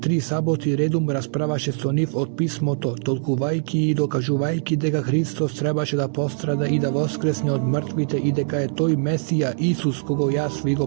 саботи редум расправаше со нив од писмото, толкувајќи и докажувајќи дека Христос требаше да пострада и да воскресне од мртвите и дека е тој Месија Исус кого јас ви го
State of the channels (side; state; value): left; silent; digital silence